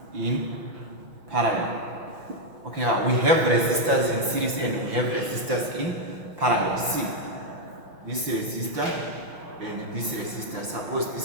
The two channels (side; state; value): left; late; 6.0 ms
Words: In parallel. Okay, we have resistors in series and we have resistors in parallel. See, this resistor and this resistor. Suppose